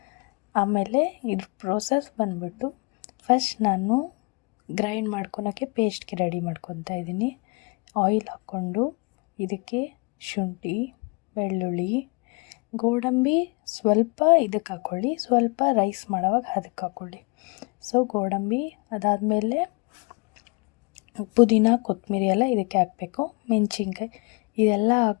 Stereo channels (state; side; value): quieter; right; 30.9 dB